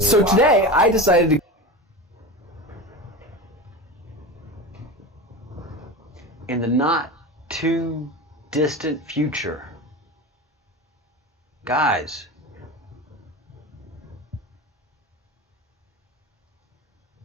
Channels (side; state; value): both; normal; correlation 0.26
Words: today I decided to in the not too distant future. Guys,